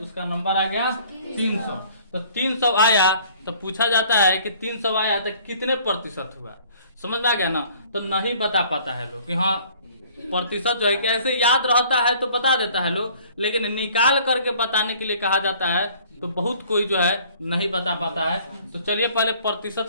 नंबर आ गया 300, तो 300 आया तो पूछा जाता है कि 300 आया तो कितने प्रतिशत हुआ, समझ में आ गया ना। तो नहीं बता पाता है लोग कि हाँ प्रतिशत जो है कैसे याद रहता है तो बता देता है लोग, लेकिन निकाल करके बताने के लिए कहा जाता है तो बहुत कोई जो है नहीं बता पाता है। तो चलिए पहले प्रतिशत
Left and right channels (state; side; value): inverted; both; correlation -0.54